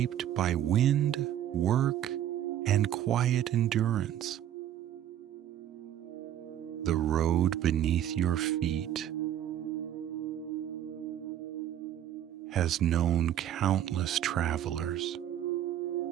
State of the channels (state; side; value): quieter; left; 11.3 dB